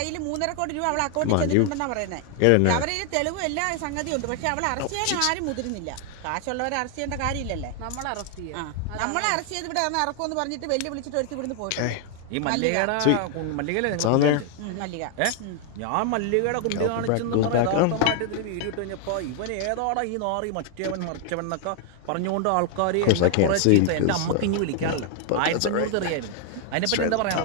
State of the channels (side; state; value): both; different; correlation 0.00